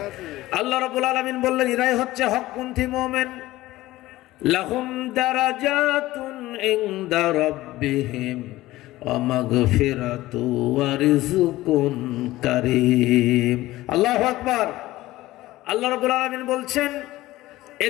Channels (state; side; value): quieter; right; 17.1 dB